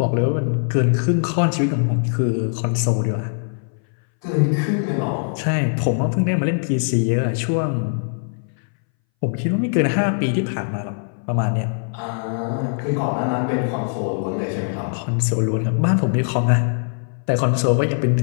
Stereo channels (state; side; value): silent; right; 62 dB below the other